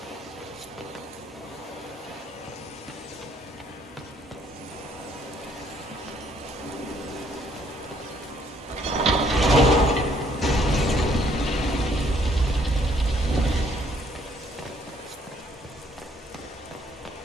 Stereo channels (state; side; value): normal; both; correlation 0.65